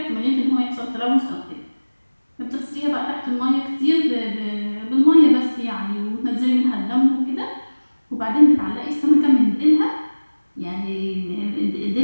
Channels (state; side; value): inverted; both; correlation -1.00